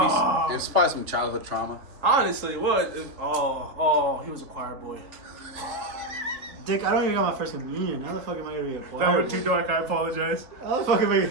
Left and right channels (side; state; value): left; late; 3.6 ms